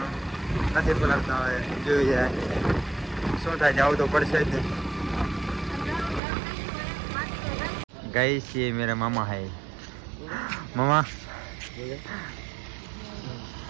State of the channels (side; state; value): left; drops out; at 6.2 s